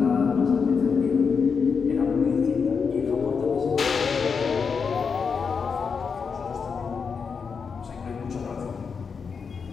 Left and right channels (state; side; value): quieter; right; 5.7 dB